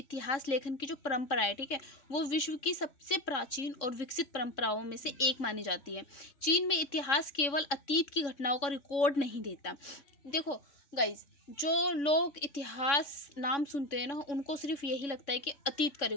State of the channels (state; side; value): late; right; 3.6 ms